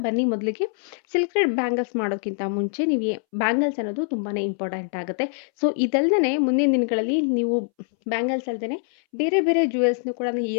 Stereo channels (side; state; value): right; silent; 62 dB below the other